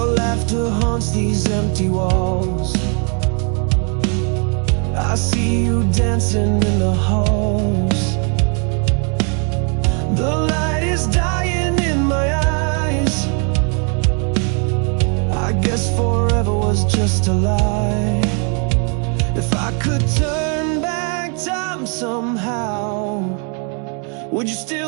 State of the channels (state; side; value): quieter; left; 38.6 dB